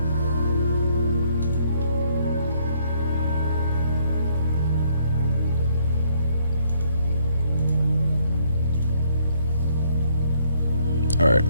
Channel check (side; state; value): both; inverted; correlation -0.67